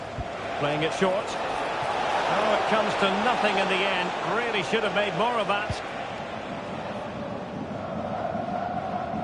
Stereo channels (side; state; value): both; identical; correlation 1.00